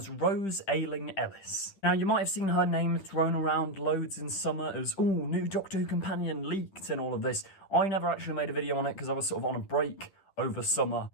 Rose Ayling Ellis. Now, you might have seen her name thrown around loads in summer as, ooh, new Doctor Who companion leaked and all of this. I never actually made a video on it because I was sort of on a break over summer.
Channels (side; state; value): right; late; 10 ms